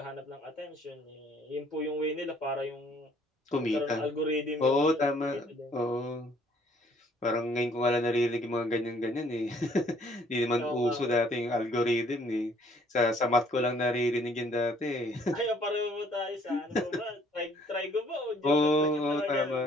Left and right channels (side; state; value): both; normal; correlation 0.61